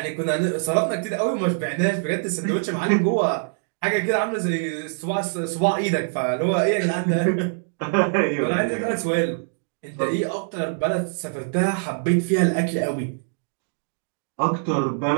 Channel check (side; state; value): left; silent; digital silence